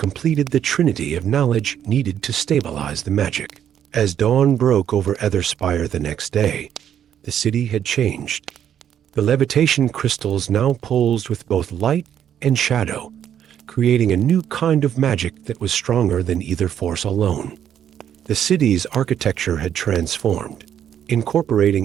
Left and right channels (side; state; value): left; quieter; 9.7 dB